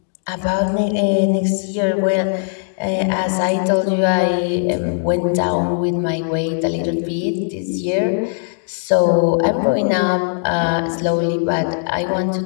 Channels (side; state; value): right; silent; digital silence